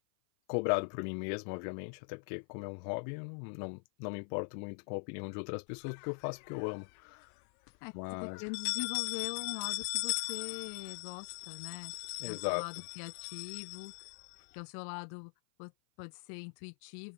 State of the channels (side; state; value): right; silent; 50 dB below the other